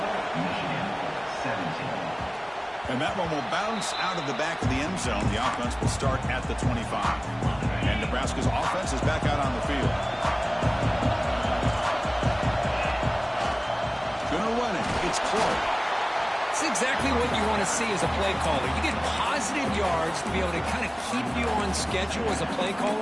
And that one will bounce out of the back of the end zone. The offense will start at the 25. And Nebraska's offense is back out on the field. Gonna run it. It's Clark. It's exactly what you want to see as a play caller. You get positive yards to be able to kind of keep you on schedule as a play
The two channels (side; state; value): both; identical; correlation 1.00